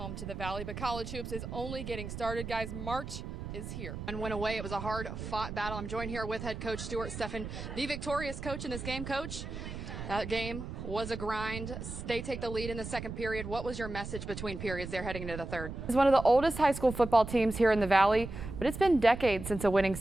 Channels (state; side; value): noise; right; rumble, 8 dB below the sound